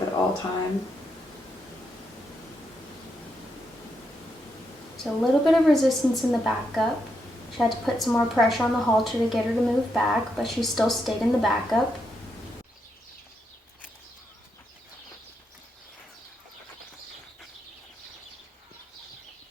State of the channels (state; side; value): normal; both; correlation 0.81